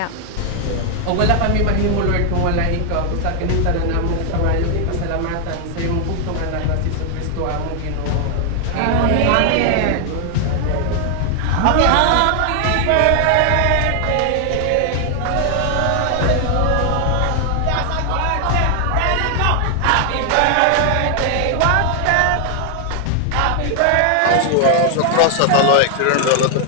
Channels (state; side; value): different; both; correlation 0.00